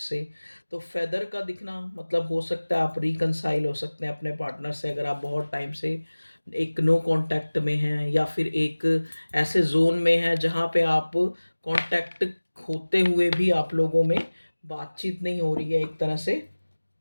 से, तो फेदर का दिखना मतलब हो सकता है आप रिकनसाइल हो सकते हैं अपने पार्टनर से, अगर आप बहुत टाइम से एक नो कांटेक्ट में हैं, या फिर एक ऐसे जोन में हैं जहाँ पे आप कांटेक्ट होते हुए भी आप लोगों में बातचीत नहीं हो रही है एक तरह से।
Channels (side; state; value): both; inverted; correlation -1.00